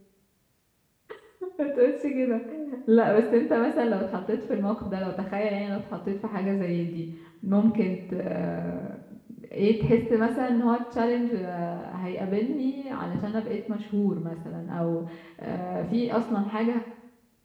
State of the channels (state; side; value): identical; both; correlation 1.00